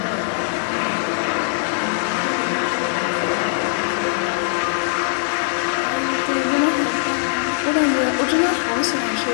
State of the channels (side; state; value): right; silent; 65 dB below the other